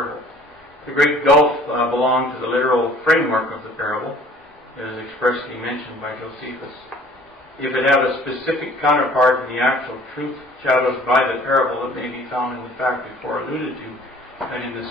The great gulf belonged to the literal framework of the parable. It is expressly mentioned by Josephus. If it have a specific counterpart in the actual truth shadowed by the parable, it may be found in the fact before alluded to, that in the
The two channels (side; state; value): both; normal; correlation 0.52